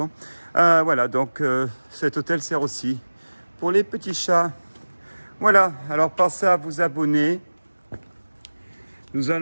Voilà, donc cet hôtel sert aussi pour les petits chats. Voilà, alors pensez à vous abonner. Nous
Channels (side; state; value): both; inverted; correlation -1.00